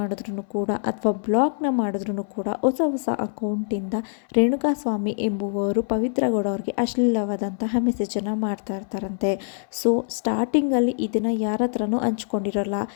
ಕೂಡ ಅಥವಾ ಬ್ಲಾಕ್ನ ಮಾಡಿದ್ರು ಕೂಡ ಹೊಸ ಅಕೌಂಟಿಂದ ರೇಣುಕಾಸ್ವಾಮಿ ಎಂಬುವವರು ಪವಿತ್ರ ಗೌಡ ಅವ್ರಿಗೆ ಅಶ್ಲೀಲವಾದಂತಹ ಮೆಸೇಜನ್ನು ಮಾಡ್ತಾ ಇರ್ತಾರಂತೆ. ಸೊ ಸ್ಟಾರ್ಟಿಂಗಲ್ಲಿ ಇದನ್ನು ಯಾರ ಹತ್ರನೂ ಹಂಚ್ಕೊಂಡಿರೋಲ್ಲ.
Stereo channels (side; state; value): right; silent; 62 dB below the other